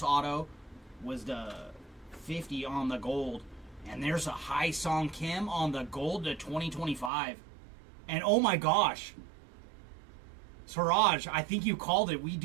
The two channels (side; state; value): left; drops out; at 7.1 s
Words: auto was the 50 on the gold. And there's a Hai Song Kim on the gold to 2025. And oh my gosh. Siraj, I think you called it. We